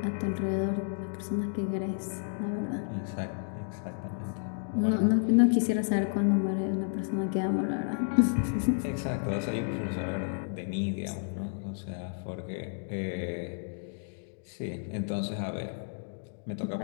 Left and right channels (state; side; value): silent; right; digital silence